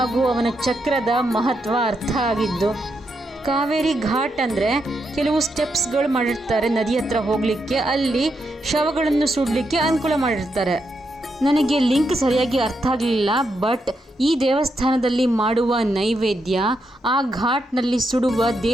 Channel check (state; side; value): normal; both; correlation 0.82